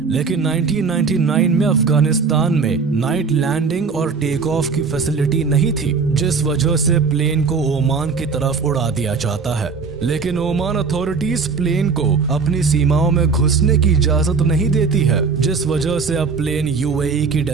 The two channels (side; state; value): left; quieter; 5.0 dB